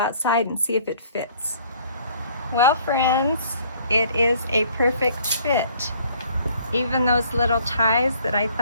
and see if it fits. Well, friends, it is a perfect fit. Even those little ties that I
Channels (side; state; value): both; inverted; correlation -0.58